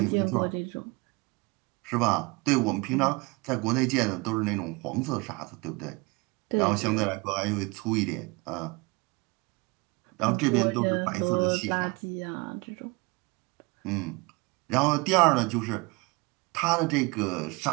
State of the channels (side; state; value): left; quieter; 26.3 dB